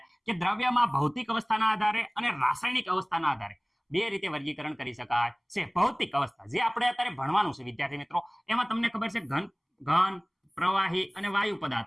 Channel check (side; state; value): both; identical; correlation 1.00